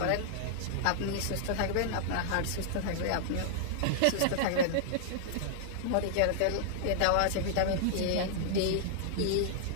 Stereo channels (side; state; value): both; different; correlation -0.01